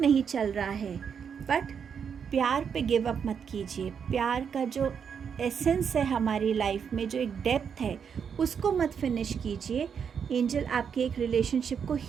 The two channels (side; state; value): left; quieter; 7.1 dB